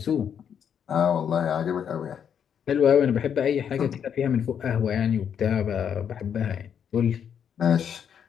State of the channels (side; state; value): right; quieter; 8.1 dB